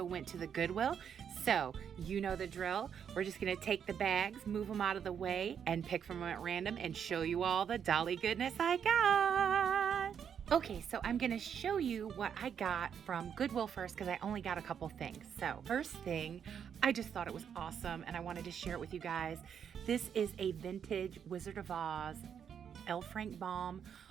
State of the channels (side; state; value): left; quieter; 8.0 dB